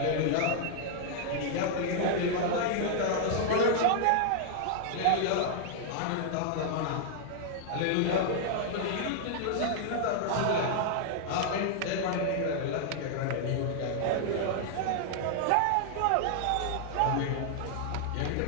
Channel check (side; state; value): both; different; correlation 0.00